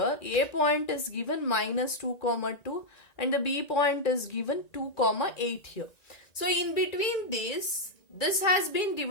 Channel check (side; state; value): right; late; 1.9 ms